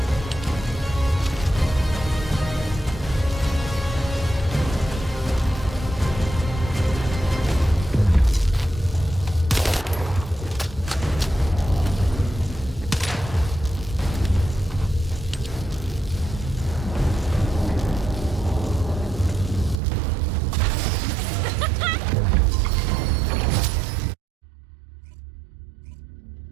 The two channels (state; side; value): drops out; left; at 19.8 s